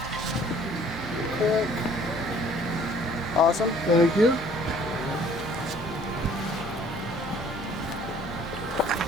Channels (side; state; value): both; normal; correlation 0.56